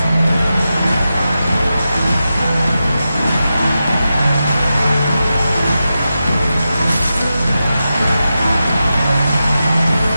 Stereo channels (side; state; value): both; inverted; correlation -0.90